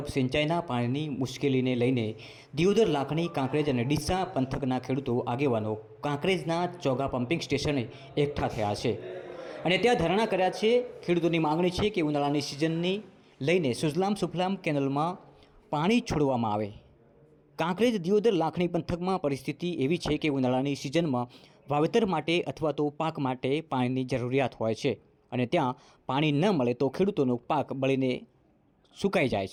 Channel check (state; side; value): identical; both; correlation 1.00